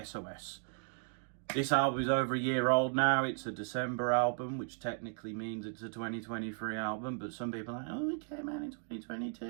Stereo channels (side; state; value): left; silent; 54 dB below the other